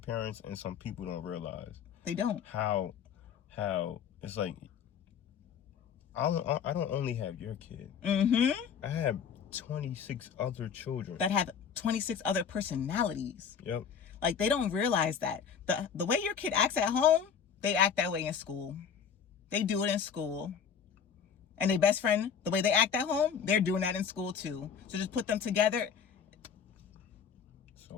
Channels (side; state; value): right; quieter; 7.1 dB